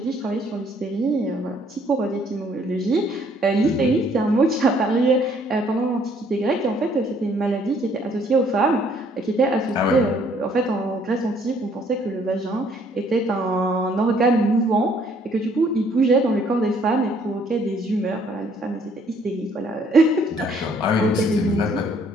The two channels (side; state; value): both; normal; correlation 0.63